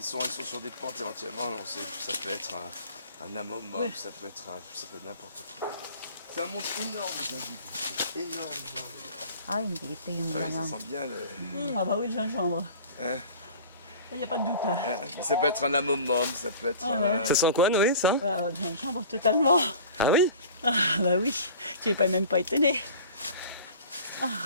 sont sur des pentes éventuellement, on sait que ça peut être un amomum, ça peut être n'importe quoi. C'est un monde énorme, j'ai vu. Énorme. Ah, hindi. Ito yung Ah oui, ça langang. sent bien le... Ah bah oui, le gingembre. Hein. Il n'y a pas de doute. Hein. Ça peut être un amomum, ça peut être... Ça sent quoi Noé ça? Ah, le gingembre totalement. Ah oui? Ah bah oui, tu n'es pas même pas étonné.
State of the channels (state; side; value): inverted; both; correlation -0.42